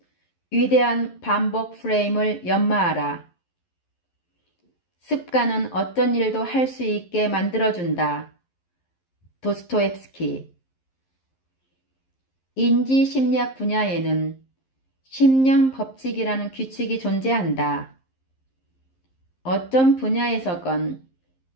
위대한 반복 프레임을 연마하라. 습관은 어떤 일도 할 수 있게 만들어준다. 도스토옙스키. 인지심리학 분야에는 심령 법칙이라는 규칙이 존재한다. 어떤 분야에서건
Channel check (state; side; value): late; right; 11 ms